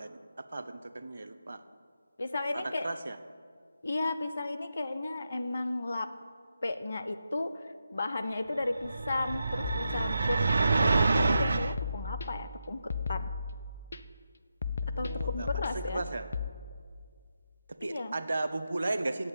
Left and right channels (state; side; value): inverted; both; correlation -0.86